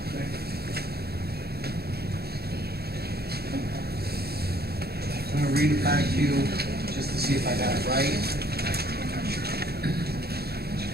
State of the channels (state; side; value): late; left; 0.46 ms